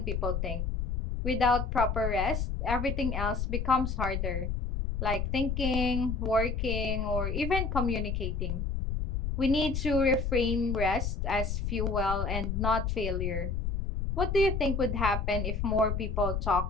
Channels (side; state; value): left; noise; rumble, 1 dB below the sound